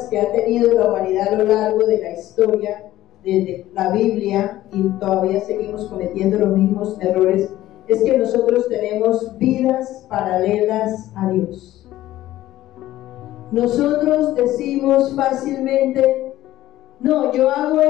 que ha tenido la humanidad a lo largo de la historia, desde la Biblia, y todavía seguimos cometiendo los mismos errores, es que nosotros tenemos vidas paralelas a Dios. Nosotros decimos fácilmente, no, yo hago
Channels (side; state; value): right; quieter; 14.8 dB